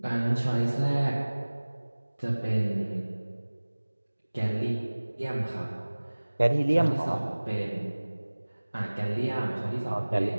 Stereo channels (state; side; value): inverted; both; correlation -1.00